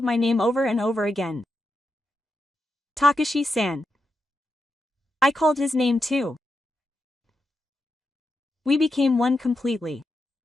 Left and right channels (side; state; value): both; normal; correlation 0.86